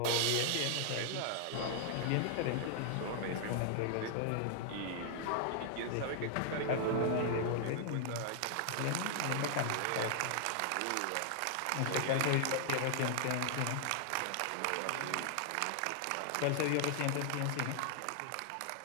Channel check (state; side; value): different; both; correlation 0.00